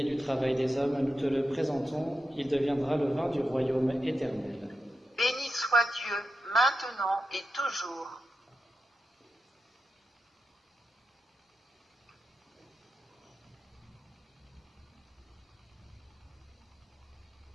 du travail des hommes, nous te le présentons, il deviendra le vin du royaume éternel. Béni soit Dieu, maintenant et toujours.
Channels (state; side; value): normal; both; correlation 0.88